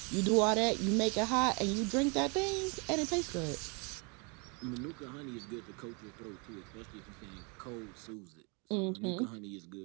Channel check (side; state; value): left; quieter; 32.7 dB